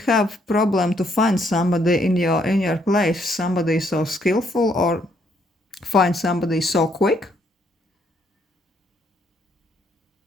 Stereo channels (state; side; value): normal; both; correlation 0.71